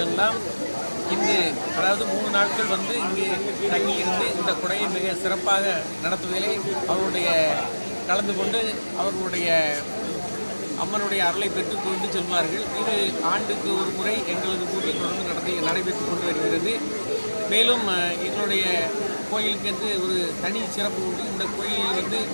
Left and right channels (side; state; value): both; inverted; correlation -1.00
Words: எல்லாம் இங்கு அதாவது 3 நாட்கள் வந்து இங்கு தங்கியிருந்து இந்த குடையை மிக சிறப்பாக நடத்துவதிலே அவருடைய கலந்து கொண்டு அவர்களுடைய அம்மனுடைய அருளை பெற்றுக் கொண்டு செல்வார்கள். இது ஆண்டுக்கு ஒரு முறை எங்களது ஊரில் தொடர்ந்து நடைபெற்று கொண்டு வருகிறது. மேலும் எங்களுடைய கோயிலுக்கு என்று ஒரு தனி சிறப்பு உண்டு. இந்த கோயிலில் வந்து